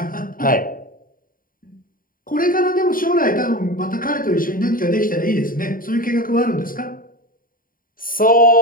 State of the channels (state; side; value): late; right; 0.41 ms